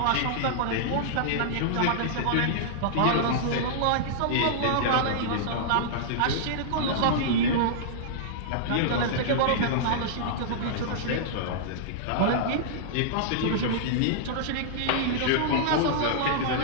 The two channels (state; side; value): different; both; correlation -0.02